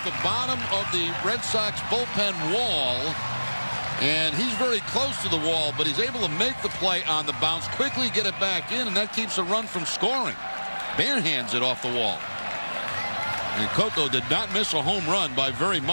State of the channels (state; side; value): inverted; both; correlation -1.00